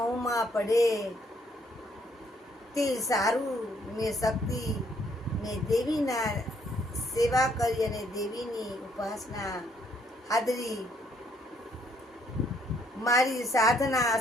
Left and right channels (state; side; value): normal; both; correlation 0.68